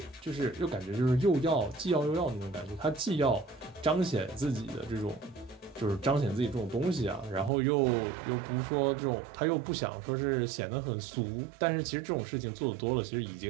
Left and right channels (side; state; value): left; drops out; at 7.5 s